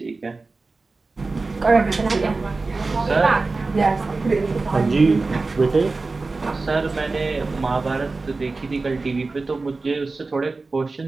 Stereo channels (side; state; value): left; quieter; 3.7 dB